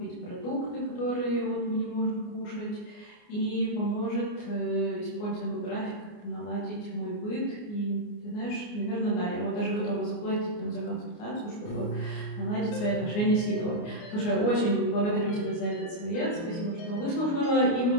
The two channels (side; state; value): right; late; 29 ms